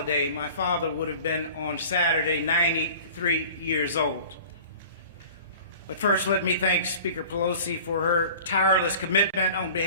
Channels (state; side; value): inverted; both; correlation -0.43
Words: My father would have been on Saturday 93 years old. But first, let me thank Speaker Pelosi for her tireless commitment on